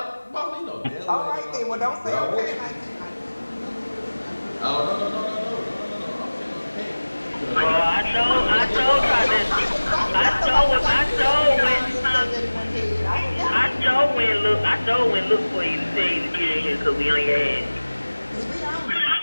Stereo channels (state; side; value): inverted; both; correlation -1.00